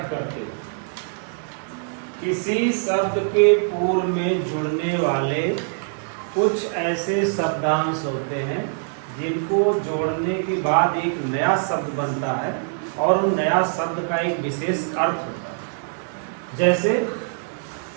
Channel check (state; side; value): silent; left; digital silence